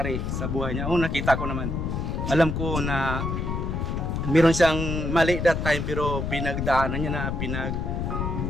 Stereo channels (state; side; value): noise; left; rumble, 2 dB below the sound